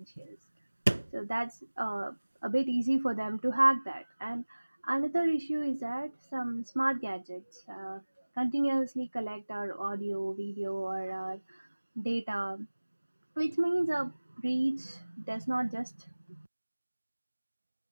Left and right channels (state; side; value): inverted; both; correlation -1.00